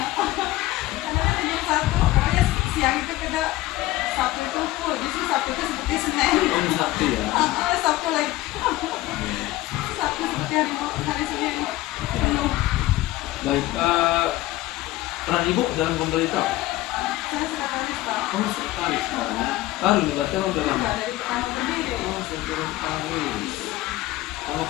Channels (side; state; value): right; quieter; 16.8 dB